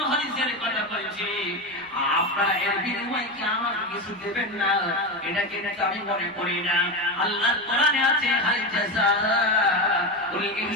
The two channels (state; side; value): noise; right; rumble, 29 dB below the sound